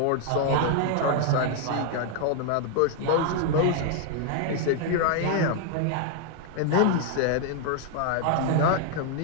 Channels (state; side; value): different; both; correlation 0.00